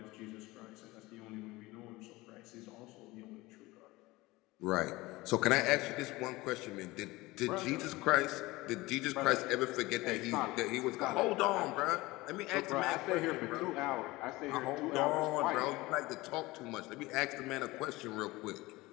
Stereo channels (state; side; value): quieter; right; 20.6 dB